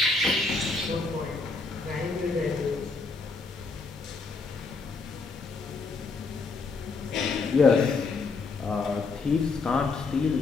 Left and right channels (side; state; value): right; quieter; 4.1 dB